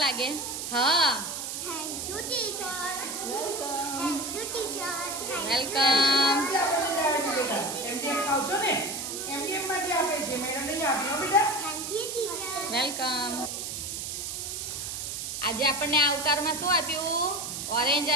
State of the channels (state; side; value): noise; right; hiss, 5 dB below the sound